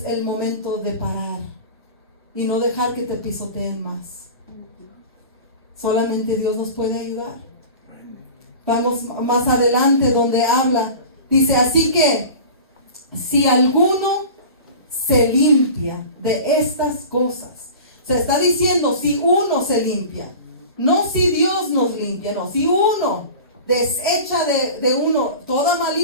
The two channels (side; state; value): both; inverted; correlation -0.36